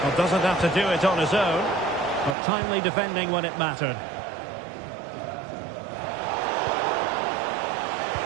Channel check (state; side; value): drops out; left; at 2.4 s